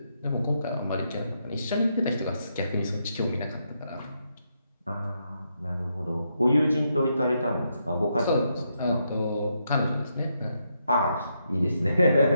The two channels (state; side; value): inverted; both; correlation -0.80